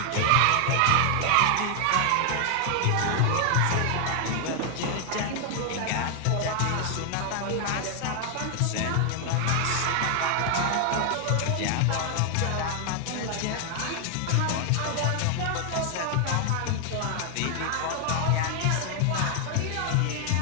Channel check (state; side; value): different; both; correlation 0.00